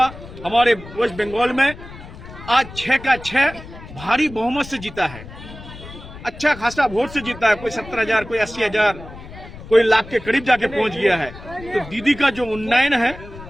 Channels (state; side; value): noise; left; rumble, 15 dB below the sound